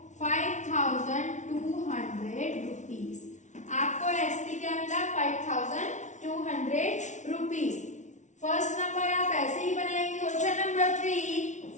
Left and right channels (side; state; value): right; late; 0.35 ms